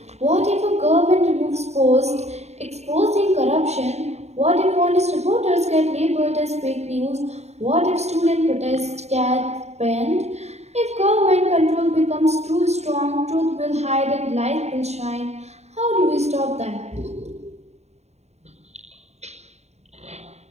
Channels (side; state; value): left; late; 0.32 ms